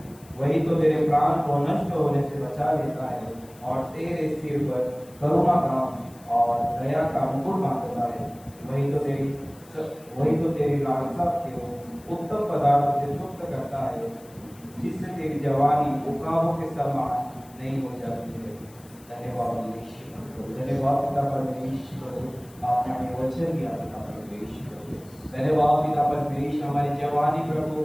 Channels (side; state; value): left; noise; hiss, 25 dB below the sound